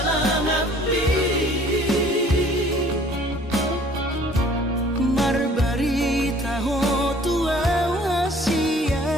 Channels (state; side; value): normal; both; correlation 0.54